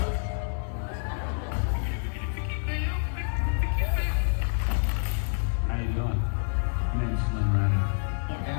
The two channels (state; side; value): silent; right; 57 dB below the other